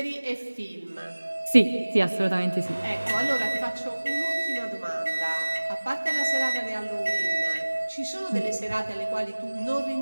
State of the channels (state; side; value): inverted; both; correlation -1.00